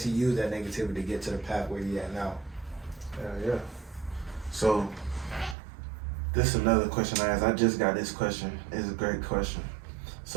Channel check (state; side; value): drops out; left; at 5.6 s